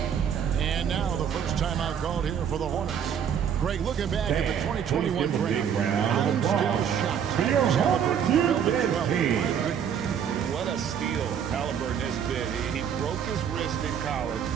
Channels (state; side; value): quieter; left; 8.2 dB